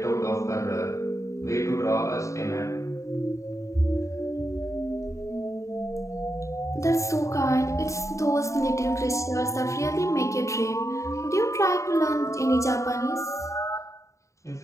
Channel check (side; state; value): right; late; 0.15 ms